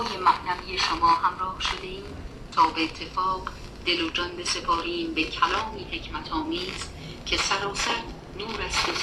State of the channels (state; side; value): identical; both; correlation 1.00